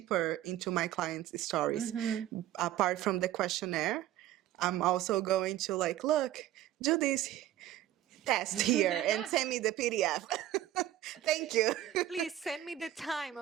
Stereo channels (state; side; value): quieter; left; 13.0 dB